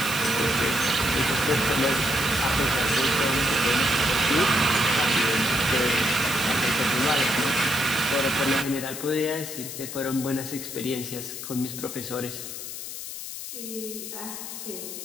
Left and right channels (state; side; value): noise; left; hiss, 8 dB below the sound